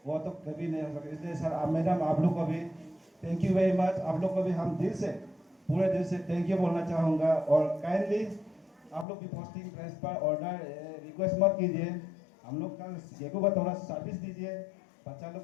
वो तो कभी नहीं हो सकता। इसलिए सर मैडम आप लोग को भी थैंक यू वेरी मच, आप लोग को भी हम पूरे दिल से थैंक यू बोलना चाहूँगा। और काइंडली आप लोग की पोस्टिंग ट्रांसफर ऑर्डर रिक्वेस्ट मत कीजिए, हम लोग का गेको का थोड़ा सर्विस दीजिए, बच्चा लोग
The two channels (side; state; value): right; drops out; at 9.1 s